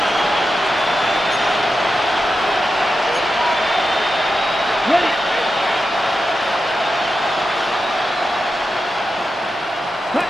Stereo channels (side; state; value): both; normal; correlation 0.89